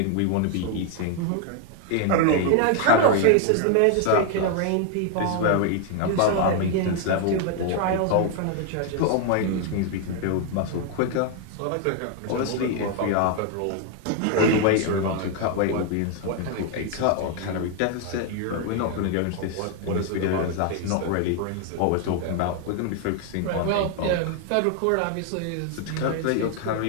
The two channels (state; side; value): different; both; correlation 0.00